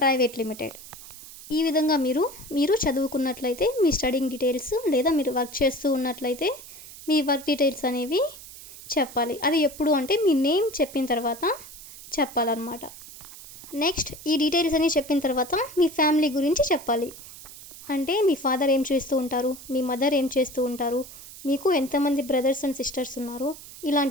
limited. ఈ విధంగా మీరు చదువుకున్నట్లయితే మీ స్టడింగ్ డీటెయిల్స్ లేదా మీరు వర్క్ చేస్తూ ఉన్నట్లయితే మీ వర్క్ డీటెయిల్స్ అనేవి చెప్పాలి. అది ఎప్పుడు అంటే మీ నేమ్ చెప్పిన తర్వాత చెప్పాలన్నమాట. నెక్స్ట్ ఈ డీటెయిల్స్ అన్నీ చెప్పిన తర్వాత మీ ఫ్యామిలీ గురించి చెప్పాలి. అంటే మీ ఫాదర్ ఏం చేస్తూ ఉంటారు, మీ మదర్ ఏం చేస్తూ ఉంటారు, మీకు ఎంతమంది బ్రదర్స్ అండ్ సిస్టర్స్ ఉన్నారు,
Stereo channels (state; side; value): noise; right; hiss, 16 dB below the sound